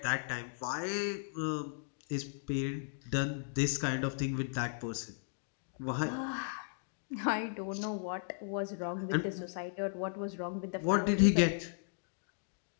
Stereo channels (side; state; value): right; silent; digital silence